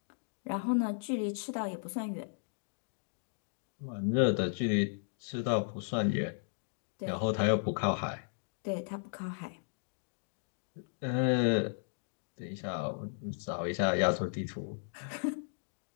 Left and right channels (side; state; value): right; silent; digital silence